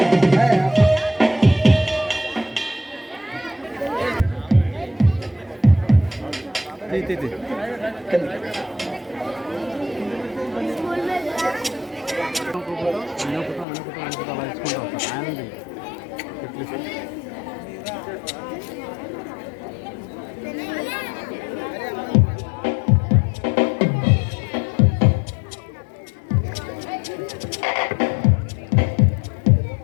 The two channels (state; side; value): drops out; right; at 13.7 s